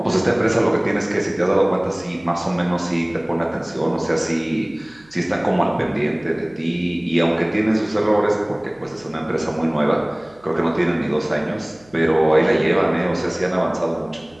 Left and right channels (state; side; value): noise; right; hum, 29 dB below the sound